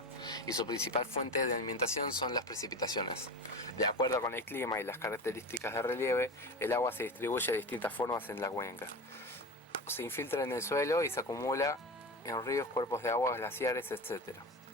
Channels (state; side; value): normal; both; correlation 0.27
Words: y su principal fuente de alimentación son las precipitaciones. De acuerdo con el clima y las características de relieve, el agua se distribuye de distintas formas en la cuenca. Se infiltra en el suelo y se acumula en ríos, cuerpos de agua, glaciares, etc.